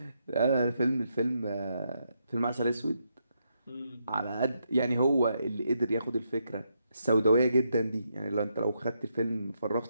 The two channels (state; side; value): inverted; both; correlation -0.80